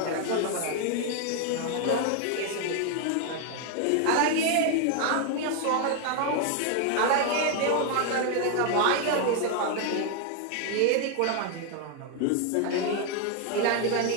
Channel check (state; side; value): different; both; correlation 0.00